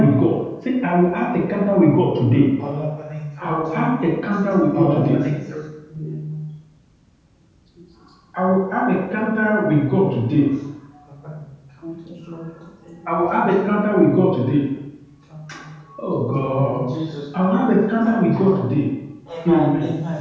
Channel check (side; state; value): both; identical; correlation 1.00